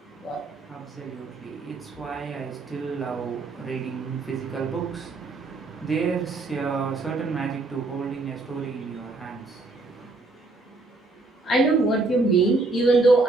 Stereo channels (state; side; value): quieter; left; 3.3 dB